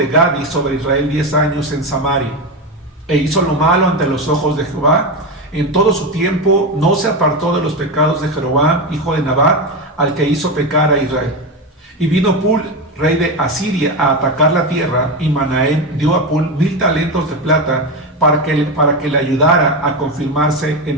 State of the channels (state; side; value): normal; both; correlation 0.15